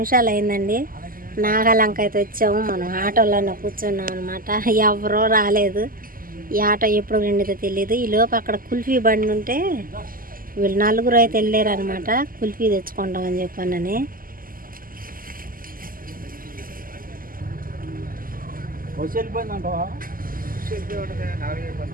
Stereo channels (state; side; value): late; left; 0.41 ms